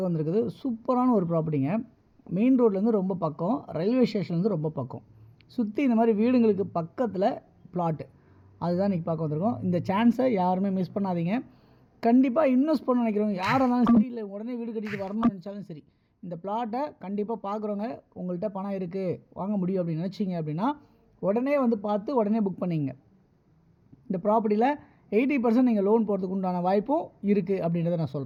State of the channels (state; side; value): identical; both; correlation 1.00